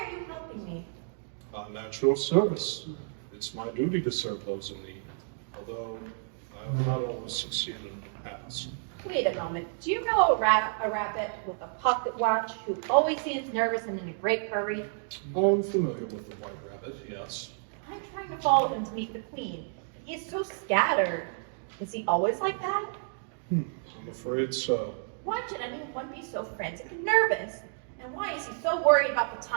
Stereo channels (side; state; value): left; silent; digital silence